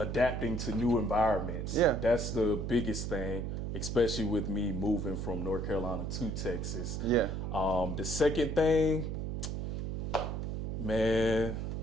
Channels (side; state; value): right; noise; hum, 3 dB below the sound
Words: to new environments. Yeah. That's the biggest thing, especially with me moving from North Carolina to Texas. Yeah. The second thing, man,